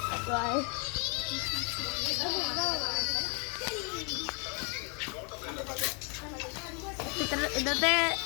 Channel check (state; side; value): quieter; right; 36.5 dB